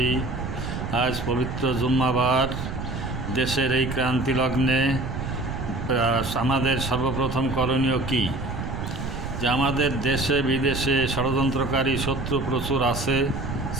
আজ পবিত্র জুম্মাবার দেশের এই ক্রান্তি লগ্নে আমাদের সর্বপ্রথম করণীয় কি? যে আমাদের দেশে বিদেশে ষড়যন্ত্রকারী শত্রু প্রচুর আছে,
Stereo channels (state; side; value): noise; right; rumble, 5 dB below the sound